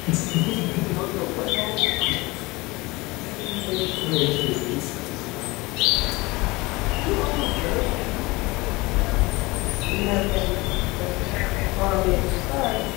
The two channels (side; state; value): right; quieter; 22.9 dB